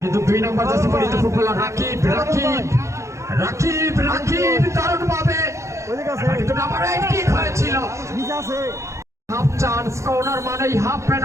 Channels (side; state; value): left; late; 0.14 ms